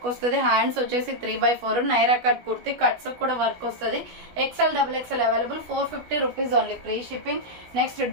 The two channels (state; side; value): late; left; 16 ms